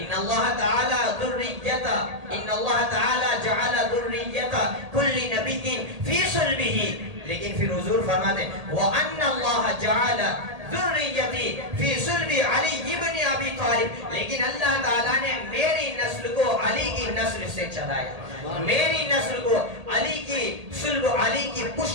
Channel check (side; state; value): left; late; 1.8 ms